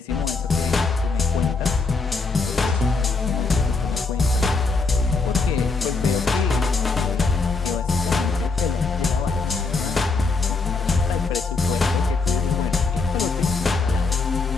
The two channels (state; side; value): quieter; right; 4.1 dB